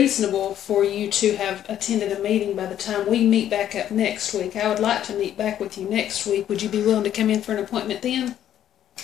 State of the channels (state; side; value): quieter; right; 10.9 dB